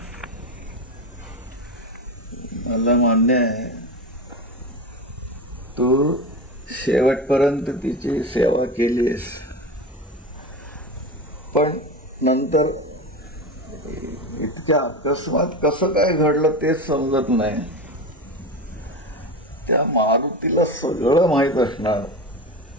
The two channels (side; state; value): both; normal; correlation 0.24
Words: मला मान्य आहे तू शेवटपर्यंत तिची सेवा केलीस, पण नंतर इतक्या अकस्मात कसं काय घडलं तेच समजत नाही. त्या मारुतीला सगळं माहीत असणार,